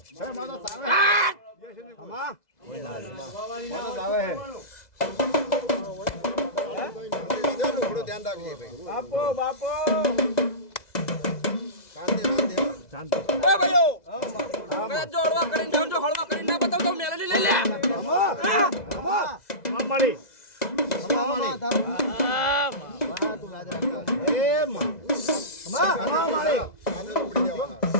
થોડું ધ્યાન રાખજો ભાઈ. બાપો બાપો શાંતિ એ ભાઈઓ કદાચ જો હળવા કરીને જાઉં જો હળવા કરીને ના બતાવ તો મેલડી લઈ લે. માળી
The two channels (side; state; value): right; late; 2.0 ms